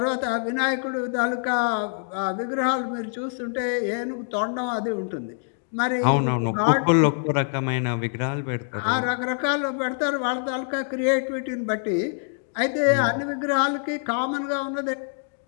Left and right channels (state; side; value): silent; right; digital silence